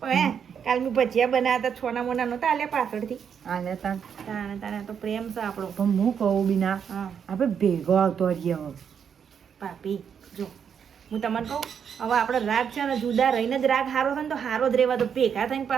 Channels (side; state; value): left; quieter; 7.5 dB